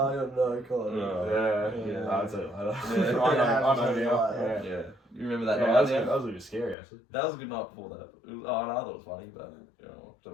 don't know. God. Yeah, Yeah. I'll tell you later. Yeah. I know Yeah. now. Yeah. Yeah. You remember that Yeah, night? that was, Yeah? that was a bit scary actually. That was a good night before that. It was, oh, no, I thought it was funny, but you know,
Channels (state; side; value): drops out; right; at 6.8 s